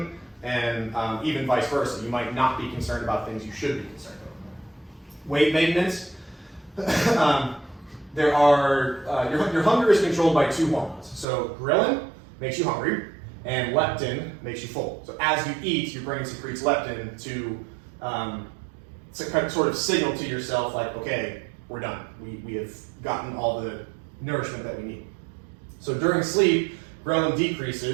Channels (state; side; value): drops out; left; at 11.2 s